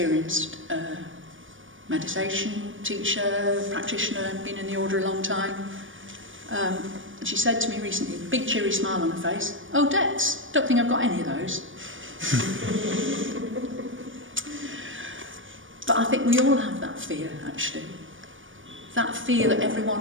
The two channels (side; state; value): left; late; 0.57 ms